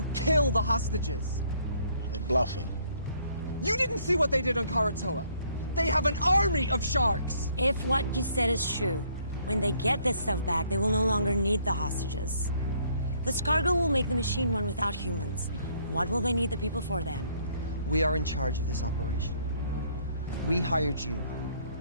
kill the hostages. They're bluffing. You didn't see what they did on Karatoa. They have an army of sharks. If what you said is true, when they get this stuff back, they will no longer need the hostages. This cargo will make the machine run without humans. What will they need the people for then? We are in charge of this operation. We hired you.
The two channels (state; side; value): inverted; both; correlation -0.65